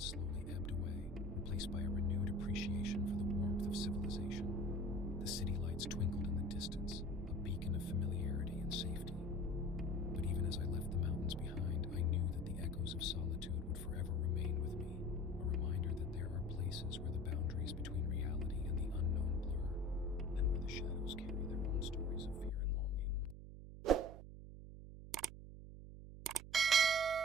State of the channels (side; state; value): right; noise; hum, 12 dB below the sound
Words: ebbed away, replaced by a renewed appreciation for the warmth of civilization. The city lights twinkled in the distance, a beacon of familiarity and safety. But even as I left the mountains behind, I knew that the echoes of solitude